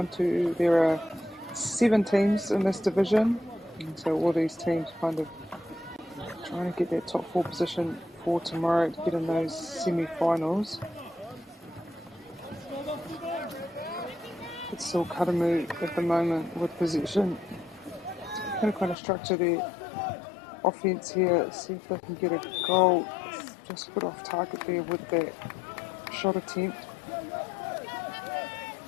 There are 7 teams in this division, and so all these teams kind of trying to get that top 4 position for tomorrow to get in those semi-finals. It's still Karamu at the moment with possession. Going to kind of structure their offense here, see if they can get a goal. Just a bit off target there with that shot attempt.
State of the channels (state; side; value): drops out; right; at 18.9 s